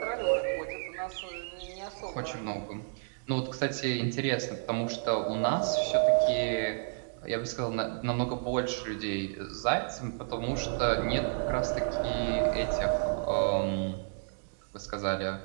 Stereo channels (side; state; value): left; silent; digital silence